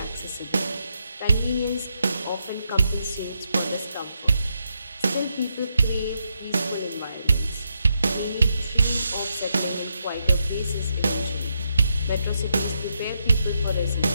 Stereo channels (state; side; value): inverted; both; correlation -0.82